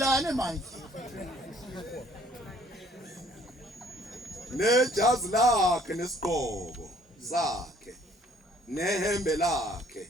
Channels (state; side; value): normal; both; correlation 0.60